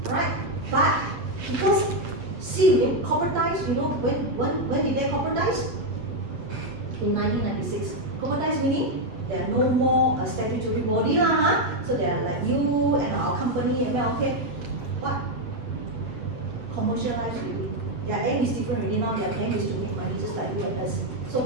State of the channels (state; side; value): late; left; 8.3 ms